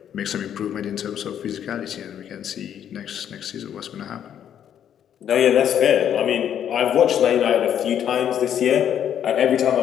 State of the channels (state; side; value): quieter; right; 9.6 dB